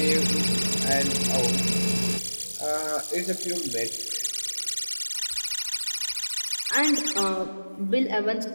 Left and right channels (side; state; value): both; inverted; correlation -1.00